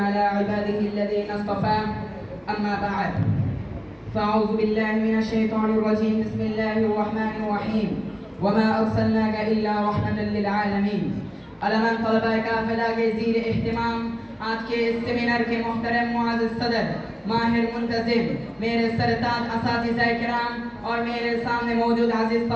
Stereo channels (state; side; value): identical; both; correlation 1.00